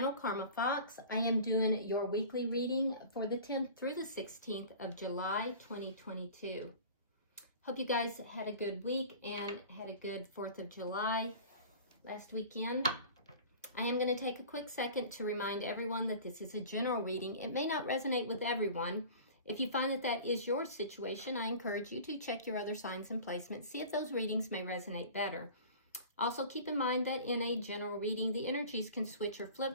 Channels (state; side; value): inverted; both; correlation -0.40